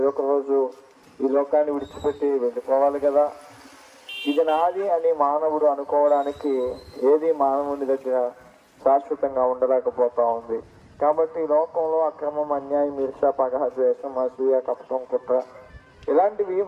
ఒక రోజు ఈ లోకాన్ని విడిచిపెట్టి వెళ్ళిపోవాలి కదా. ఇది నాది అని మానవుడు అనుకోవడానికి ఏది మానవుని దగ్గర శాశ్వతంగా ఉండలేకపోతా ఉంది. కాబట్టి ఈ లోకంలో అక్రమం, అన్యాయం, ఈర్ష్య, పగ, ద్వేషం, అసూయ, కపటం, కుట్ర ఇలాంటివి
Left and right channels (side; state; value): both; identical; correlation 1.00